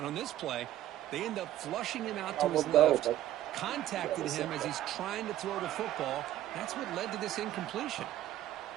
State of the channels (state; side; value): quieter; left; 13.2 dB